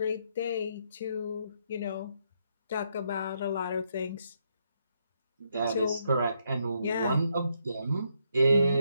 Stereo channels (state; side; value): inverted; both; correlation -0.76